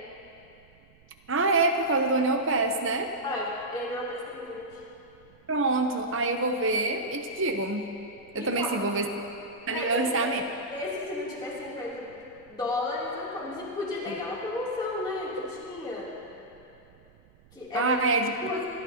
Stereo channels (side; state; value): right; noise; rumble, 28 dB below the sound